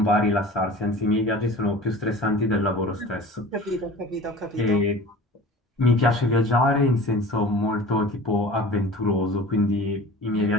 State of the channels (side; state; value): both; normal; correlation 0.40